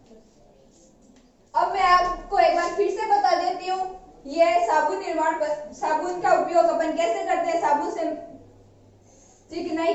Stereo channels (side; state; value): both; identical; correlation 1.00